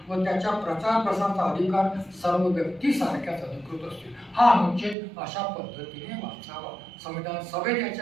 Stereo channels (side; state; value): left; drops out; at 5.0 s